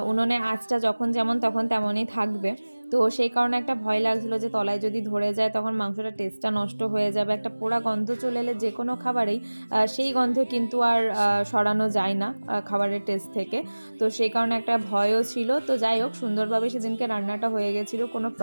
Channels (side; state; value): both; inverted; correlation -1.00